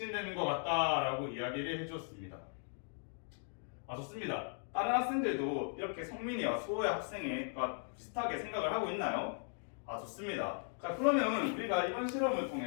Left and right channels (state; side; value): silent; right; 53 dB below the other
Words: 것 같다라고 이야기를 해주었습니다. 아, 좋습니다. 다른 학생들도 이렇게 성민이와 수호의 학생과 비슷하게 생각을 하고 있나요? 아, 좋습니다. 자, 그러면 우리가 이번 실험을